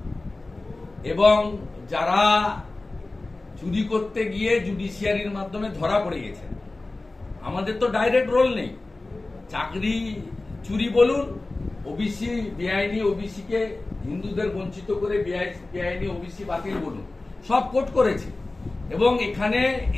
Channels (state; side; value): quieter; right; 3.1 dB